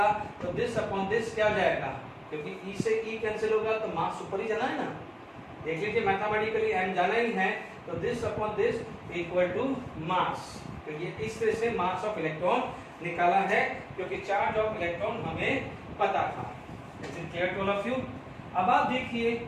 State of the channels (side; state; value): both; identical; correlation 1.00